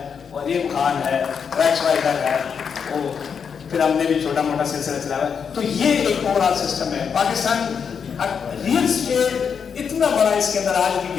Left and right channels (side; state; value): right; quieter; 6.7 dB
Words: وہ عظیم خان ہے, ریکس وائزر ہے, وہ پھر ہم نے بھی چھوٹا موٹا سلسلہ چلایا ہے. تو یہ ایک اوور آل سسٹم ہے. پاکستان ریئل اسٹیٹ اتنا بڑا اس کے اندر آج بھی